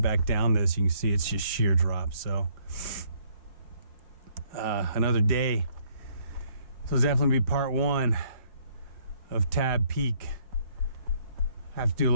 down this. You can see it's just sheer drop. So another day. So it's definitely be part one of Tabeau Peak. I have to do a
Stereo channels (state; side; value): late; left; 5.0 ms